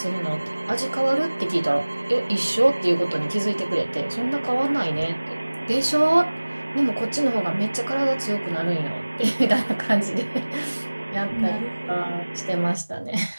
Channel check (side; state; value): both; inverted; correlation -1.00